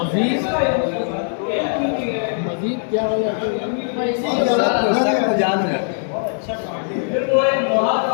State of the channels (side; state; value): right; silent; digital silence